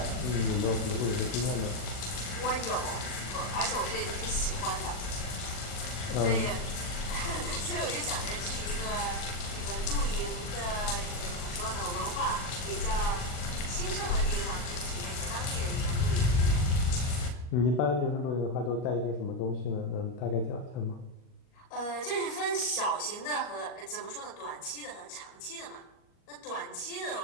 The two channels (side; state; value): right; late; 40 ms